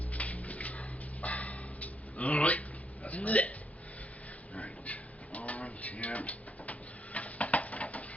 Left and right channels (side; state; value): both; normal; correlation 0.75